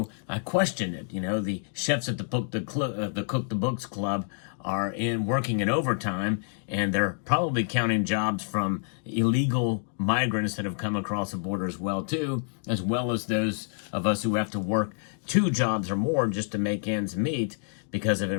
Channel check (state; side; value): silent; right; 59 dB below the other